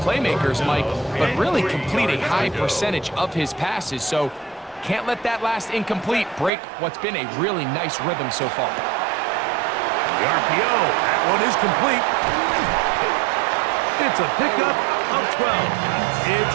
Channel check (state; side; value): drops out; left; at 6.5 s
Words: Mike, but really complete a high percentage of his passes. So can't let that last incomplete break what's been a really nice rhythm so far. The RPO, that one is complete. It's a pickup of 12.